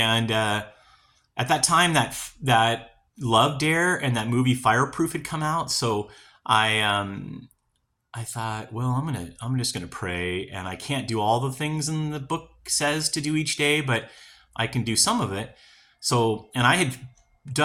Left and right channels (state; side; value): identical; both; correlation 1.00